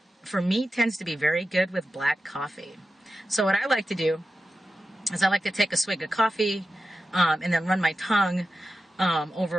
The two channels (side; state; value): both; normal; correlation 0.92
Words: for me, tends to be very good with black coffee. So what I like to do is I like to take a swig of coffee, and then run my tongue